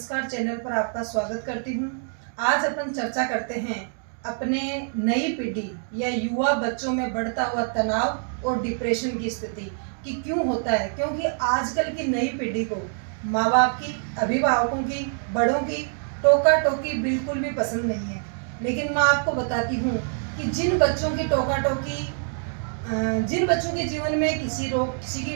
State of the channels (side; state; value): left; silent; 57 dB below the other